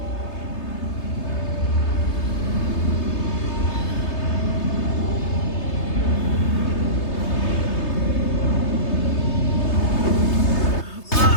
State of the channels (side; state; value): right; late; 3.3 ms